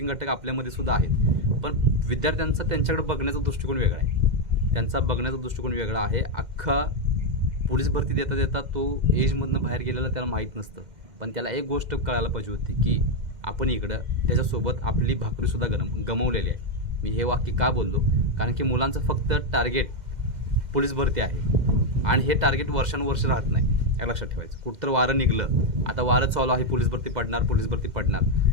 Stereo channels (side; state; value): left; late; 2.1 ms